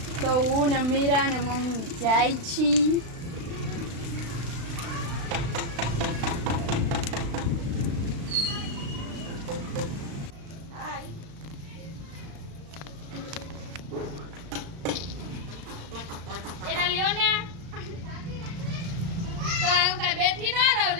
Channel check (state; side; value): late; left; 36 ms